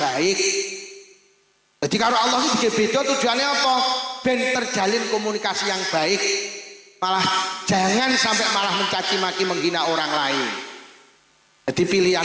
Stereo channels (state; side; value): identical; both; correlation 1.00